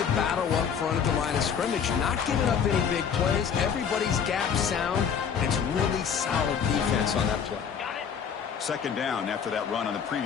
battle up front at the line of scrimmage, not giving up any big plays. Everybody's gap sound. It's really solid defense on that play. Second down after that run on the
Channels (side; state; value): right; quieter; 7.2 dB